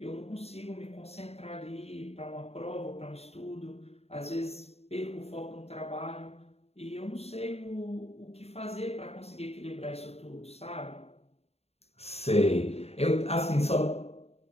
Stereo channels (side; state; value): right; late; 0.30 ms